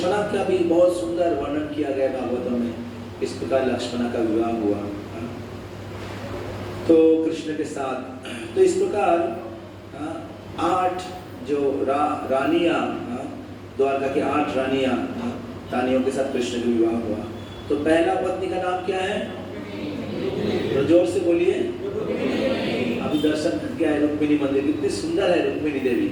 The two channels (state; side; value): identical; both; correlation 1.00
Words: का भी बहुत सुंदर वर्णन किया गया भागवतम में। इस प्रकार लक्ष्मणा का विवाह हुआ तो कृष्ण के साथ। तो इस प्रकार 8 जो रानियां, द्वारका की 8 रानियों के साथ कृष्ण का विवाह हुआ। तो पहला पत्नी का नाम क्या है? तो जोर से बोलिए। अभी दर्शन करके आए रुक्मिणी मंदिर, कितनी सुंदर है रुक्मिणी देवी।